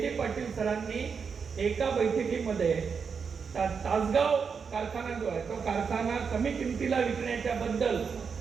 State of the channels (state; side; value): quieter; left; 6.0 dB